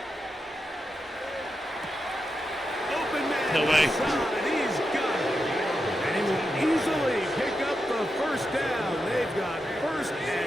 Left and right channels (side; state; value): both; normal; correlation 0.87